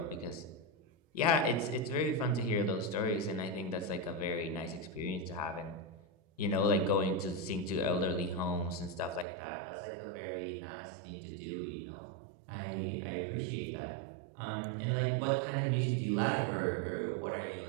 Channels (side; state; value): left; drops out; at 9.2 s